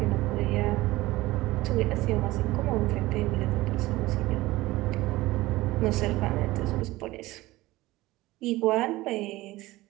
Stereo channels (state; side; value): quieter; left; 18.6 dB